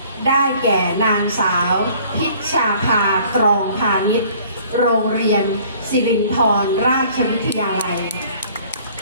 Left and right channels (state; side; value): inverted; both; correlation -0.54